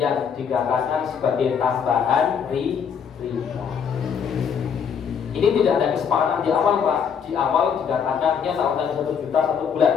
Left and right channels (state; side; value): quieter; right; 7.1 dB